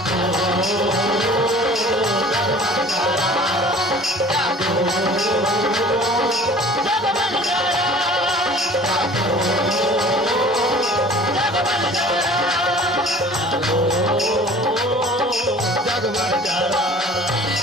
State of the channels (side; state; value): both; normal; correlation 0.47